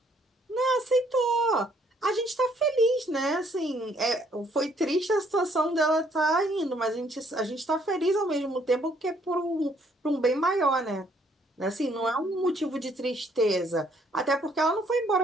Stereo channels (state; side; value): normal; both; correlation 0.66